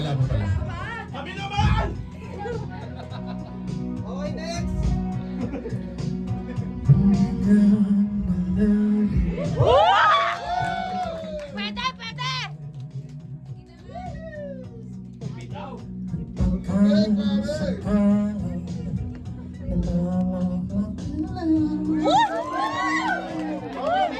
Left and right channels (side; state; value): both; identical; correlation 1.00